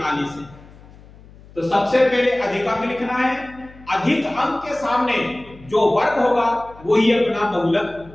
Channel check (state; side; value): noise; left; hum, 22 dB below the sound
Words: है। तो सबसे पहले अधिक अंक लिखना है, अधिक अंक के सामने जो वर्ग होगा वही अपना बहुलक